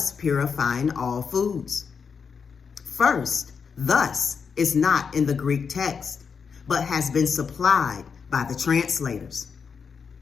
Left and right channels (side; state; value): right; quieter; 6.0 dB